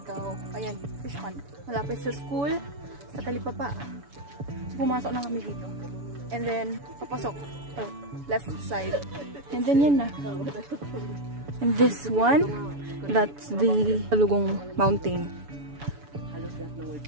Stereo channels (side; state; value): left; late; 7.0 ms